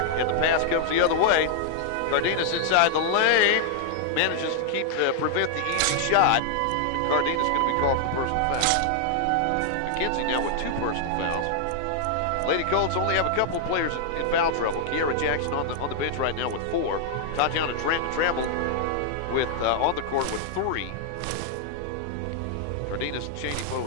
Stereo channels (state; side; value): different; both; correlation -0.01